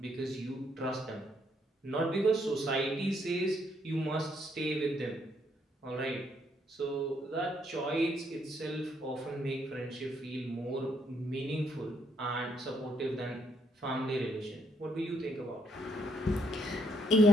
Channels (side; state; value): both; normal; correlation 0.72